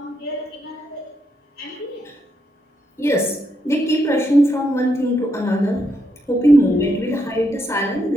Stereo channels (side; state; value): both; normal; correlation 0.79